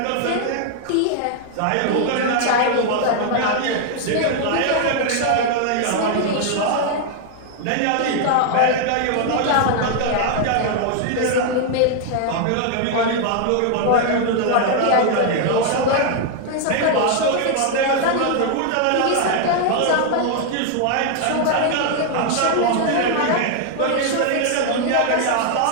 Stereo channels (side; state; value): both; different; correlation 0.00